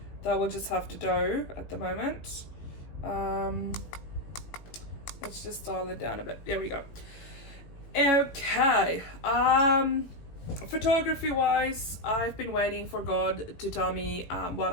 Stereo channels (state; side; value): late; right; 18 ms